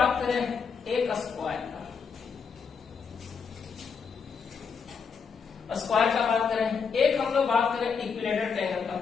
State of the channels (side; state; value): right; quieter; 6.0 dB